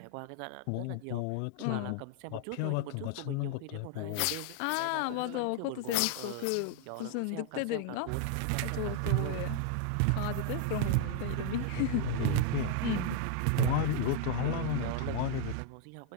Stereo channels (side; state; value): both; different; correlation 0.00